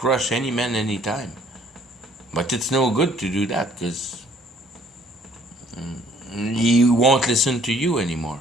any man anytime. But it's no good to do that, because he won't listen to you anymore.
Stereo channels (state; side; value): normal; both; correlation 0.60